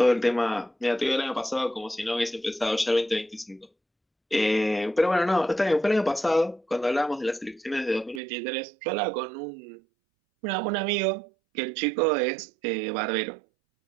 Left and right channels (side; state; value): left; drops out; at 8.2 s